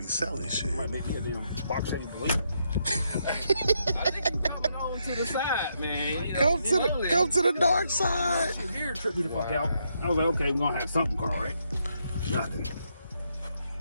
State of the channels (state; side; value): inverted; both; correlation -0.78